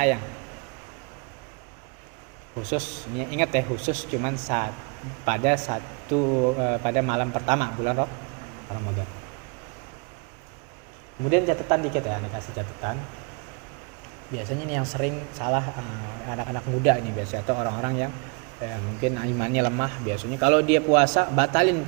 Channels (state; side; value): quieter; left; 32.8 dB